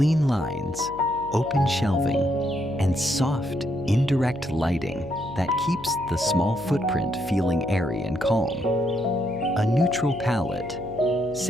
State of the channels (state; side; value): noise; left; hum, 18 dB below the sound